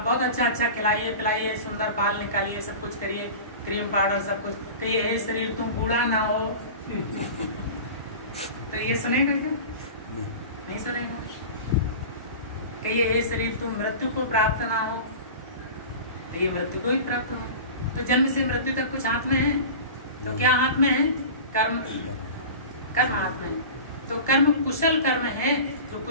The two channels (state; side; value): inverted; both; correlation -0.34